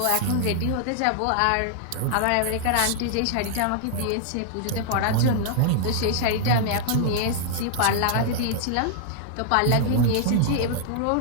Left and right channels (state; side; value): different; both; correlation -0.01